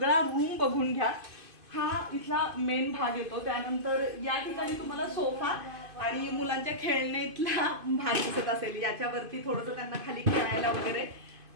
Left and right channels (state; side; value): late; left; 2.5 ms